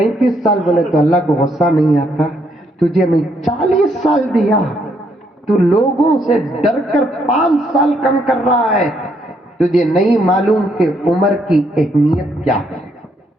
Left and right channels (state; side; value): normal; both; correlation 0.73